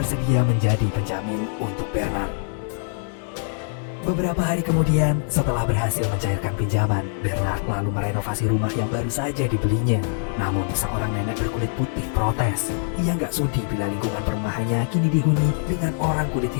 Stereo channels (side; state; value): right; silent; 63 dB below the other